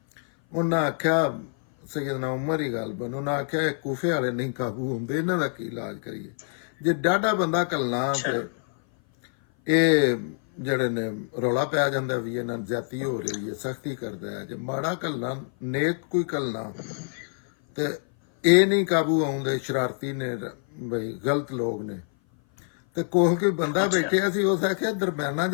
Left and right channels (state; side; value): silent; right; 57 dB below the other